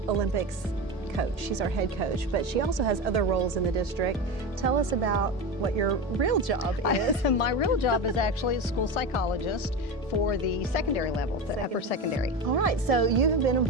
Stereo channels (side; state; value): both; normal; correlation 0.22